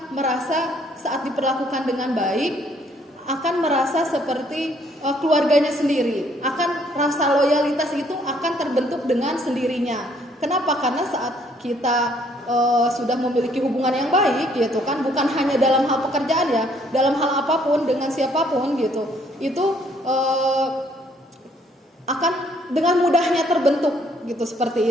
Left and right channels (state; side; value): normal; both; correlation 0.65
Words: merasa saat diperlakukan dengan baik, akan merasa seperti keluarganya sendiri, akan rasa loyalitas itu akan terbentuk dengan sendirinya. Kenapa? Karena saat kita sudah memiliki hubungan yang baik gitu kan, bukan hanya dalam hal pekerjaan ya, dalam hal apapun dengan siapapun gitu, itu akan dengan mudahnya terbentuk gitu,